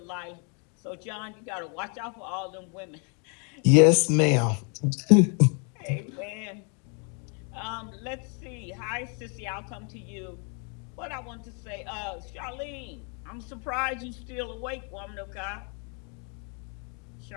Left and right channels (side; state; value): right; quieter; 37.8 dB